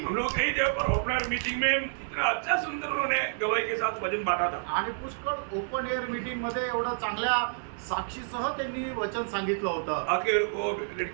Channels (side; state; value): left; silent; 58 dB below the other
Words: लोग कई जगह पर ओपनर मीटिंग में इतना अच्छा सुंदर उन्होंने गवाही के साथ वचन बांटा था। आणि पुष्कळ ओपन एअर मीटिंग मध्ये एवढं चांगल्या साक्षीसह त्यांनी वचन सांगितलं होतं आखिर वो